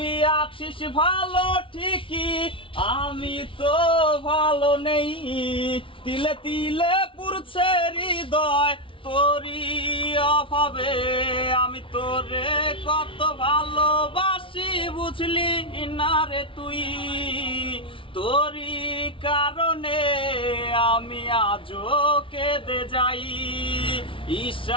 আছিস ভালো ঠিকই, আমি তো ভালো নেই। তিলে তিলে পুরছে হৃদয় তোরি অভাবে। আমি তোরে কত ভালোবাসি বুঝলি না রে তুই। তোরি কারণে আমি আজও কেঁদে যাই।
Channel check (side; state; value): right; late; 0.25 ms